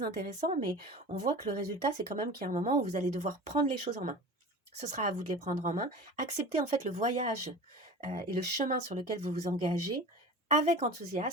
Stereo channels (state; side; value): normal; both; correlation 0.36